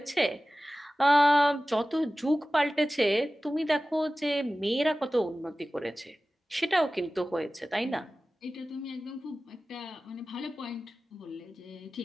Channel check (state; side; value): normal; both; correlation 0.96